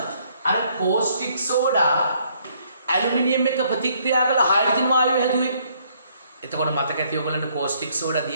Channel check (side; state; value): both; inverted; correlation -0.66